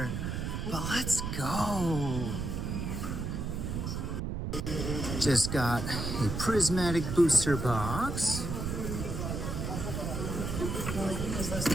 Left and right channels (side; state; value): right; noise; rumble, 3 dB below the sound